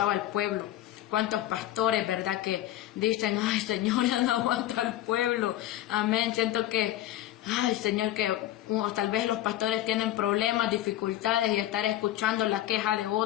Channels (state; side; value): quieter; right; 13.6 dB